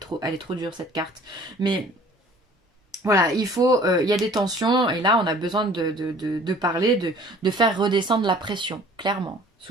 elle est trop dure cette carte. Mais voilà, il y a des tensions, et là, on a besoin de parler, de faire redescendre la pression, clairement,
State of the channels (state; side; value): normal; both; correlation 0.51